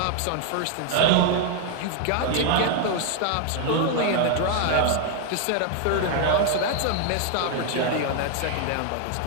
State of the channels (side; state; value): both; different; correlation 0.00